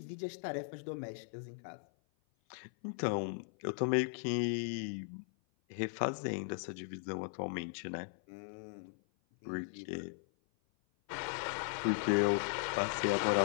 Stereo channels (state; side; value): silent; right; 53 dB below the other